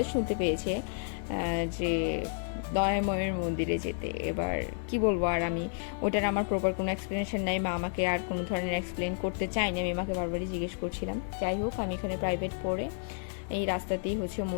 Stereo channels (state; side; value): silent; right; digital silence